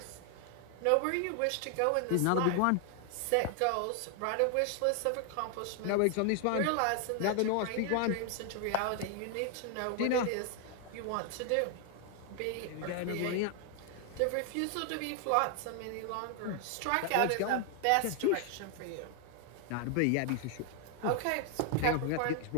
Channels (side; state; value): both; different; correlation 0.00